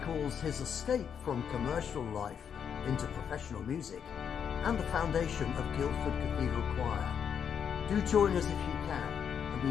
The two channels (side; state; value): right; quieter; 7.7 dB